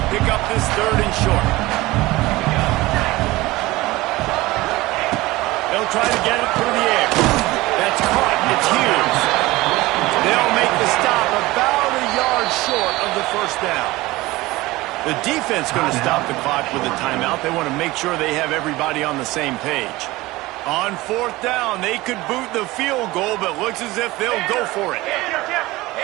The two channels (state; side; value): quieter; left; 19.6 dB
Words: pick up this third and short. They'll try to get it through the air. That's caught. It's Hughes. They'll make the stop about a yard short of the first down. The defense going to stop the clock with a timeout. They want to make sure they have everybody on the same page. On fourth down, they could boot the field goal, but looks as if they'll go for it.